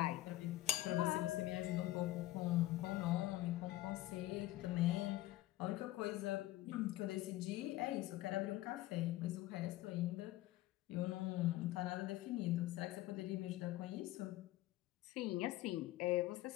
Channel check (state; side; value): quieter; right; 16.3 dB